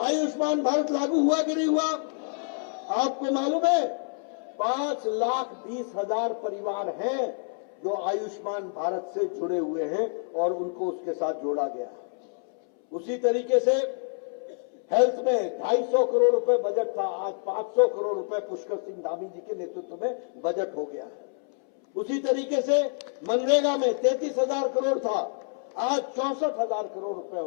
आयुष्मान भारत लागू हुआ कि नहीं हुआ? आपको मालूम है 5,20,000 परिवार हैं जो आयुष्मान भारत से जुड़े हुए हैं और उनको उसके साथ जोड़ा गया। उसी तरीके से हेल्थ में 250 करोड़ रुपए बजट था, आज 500 करोड़ रुपए पुष्कर सिंह धामी जी के नेतृत्व में बजट हो गया है। उसी तरीके से मनरेगा में 33,000 करोड़ था, आज 64,000 करोड़ रुपए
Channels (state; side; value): silent; right; 60 dB below the other